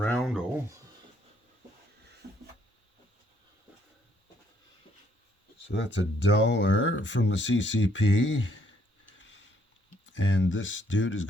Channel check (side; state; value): both; normal; correlation 0.69